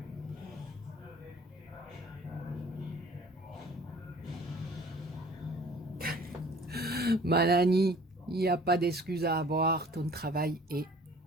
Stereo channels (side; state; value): both; normal; correlation 0.50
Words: Manani, il n'y a pas d'excuse à avoir, ton travail est